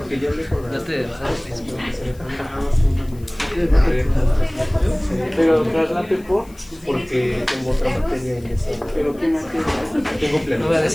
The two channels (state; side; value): noise; left; hiss, 26 dB below the sound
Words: ya hablé con la... No te desahogues. Pero traslate por. Porque tengo otra materia en esa... Pero qué materia. Tengo pleno. No voy a